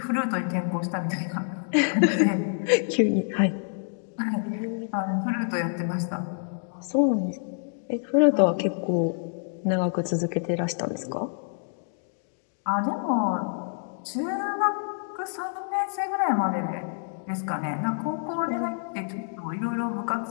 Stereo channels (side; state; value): right; silent; digital silence